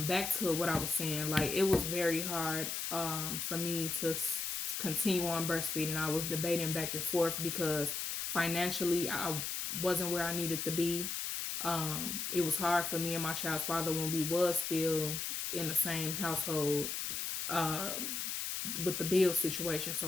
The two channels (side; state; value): left; noise; hiss, 2 dB below the sound